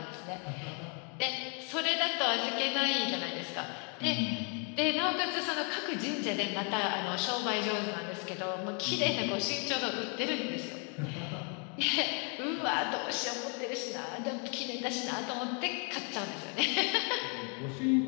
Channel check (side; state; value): right; quieter; 37.3 dB